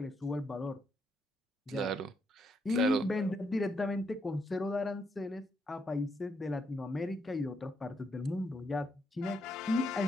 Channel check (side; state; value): both; normal; correlation 0.77